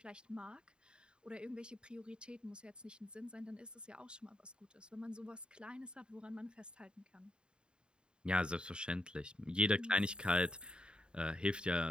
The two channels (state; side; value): late; left; 0.050 ms